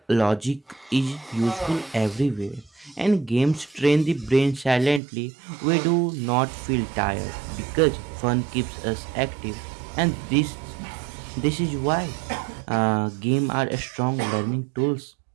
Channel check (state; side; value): drops out; left; at 5.0 s